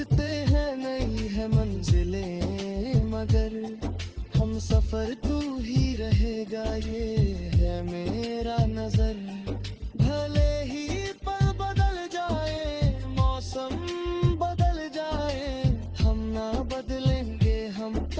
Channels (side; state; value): both; identical; correlation 1.00